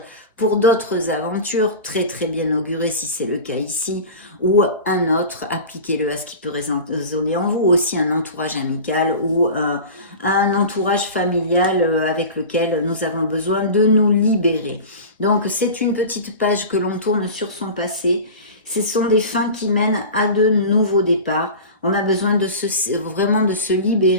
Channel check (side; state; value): both; inverted; correlation -0.33